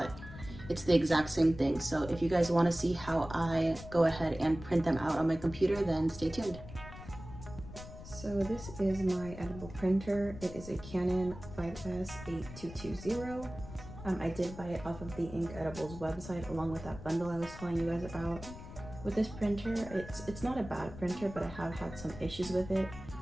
it's the exact same thing. So if you guys want to see how I go ahead and print them out on my computer, then stay tuned. So this is my edible printer. It is a Canon 5S8220. I did buy it off of the Ink Edibles website along with that bundle I was telling you guys about. With this printer, it's not a bad printer, but I have had some issues with it.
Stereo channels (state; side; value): noise; left; rumble, 13 dB below the sound